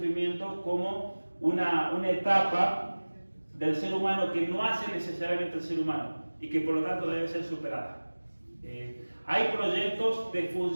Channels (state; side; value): inverted; both; correlation -1.00